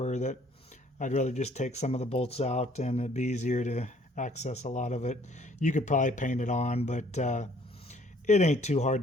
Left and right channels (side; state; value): both; normal; correlation 0.60